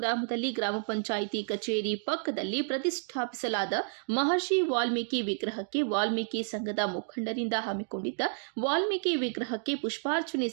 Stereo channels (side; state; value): left; silent; digital silence